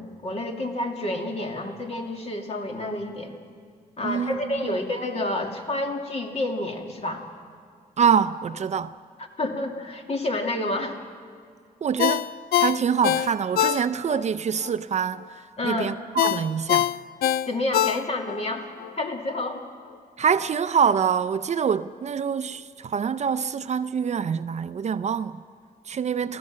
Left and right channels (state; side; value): normal; both; correlation 0.13